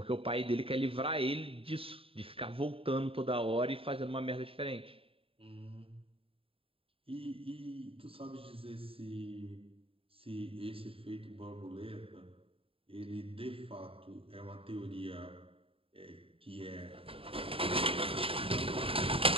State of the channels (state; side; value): late; left; 0.27 ms